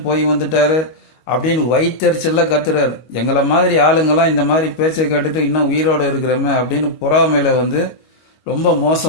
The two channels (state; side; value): late; right; 25 ms